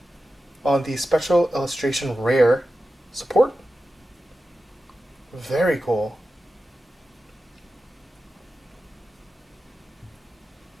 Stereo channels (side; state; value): both; normal; correlation 0.92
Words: on the Special Illustration Rare support. Very cool.